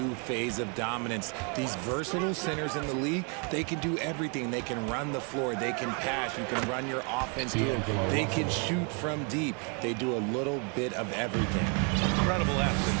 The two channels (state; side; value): quieter; left; 36.7 dB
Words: phase of dominance. These versatile centers in the league, they can do everything. They can run the floor, they can pass, you can run your offense through them. They can shoot from deep. They do a little bit of everything. Incredible